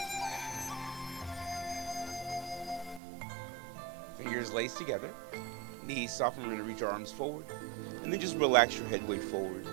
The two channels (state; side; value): drops out; left; at 3.0 s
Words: Fingers laced together. Knees soften. We're going to reach our arms forward. And then just relax your head weight forward.